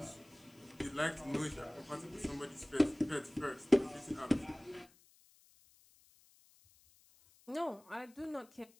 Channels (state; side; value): noise; left; hiss, 28 dB below the sound